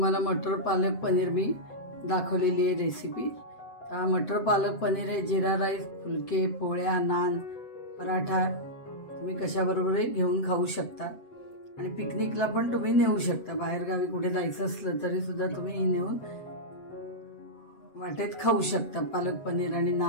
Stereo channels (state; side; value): late; right; 7.9 ms